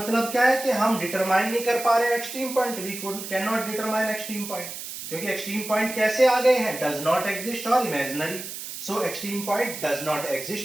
क्या है कि हम डिटरमाइन नहीं कर पा रहे extreme point, we can not determine extreme point, क्योंकि एक्सट्रीम पॉइंट कैसे आ गए हैं, डज नॉट एग्जिस्ट और imaginary. So extreme point does not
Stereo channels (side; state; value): right; noise; hiss, 9 dB below the sound